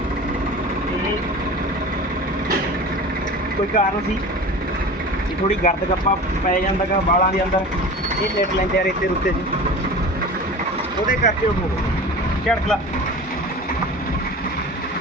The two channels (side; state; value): both; normal; correlation 0.35